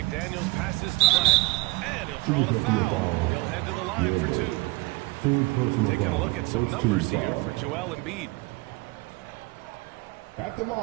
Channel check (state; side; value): quieter; left; 24.1 dB